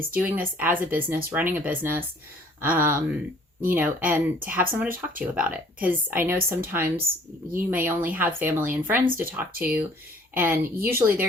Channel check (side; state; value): both; normal; correlation 0.56